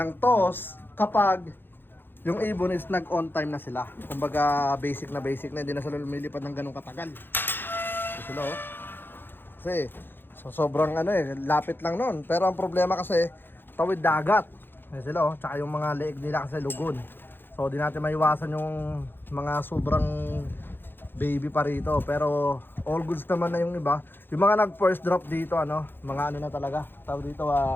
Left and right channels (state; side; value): late; right; 0.10 ms